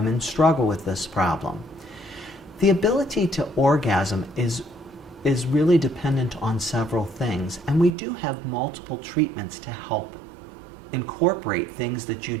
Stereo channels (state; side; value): drops out; left; at 7.9 s